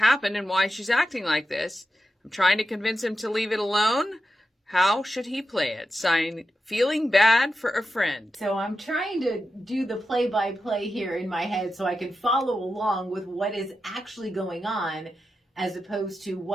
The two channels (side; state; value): both; normal; correlation 0.90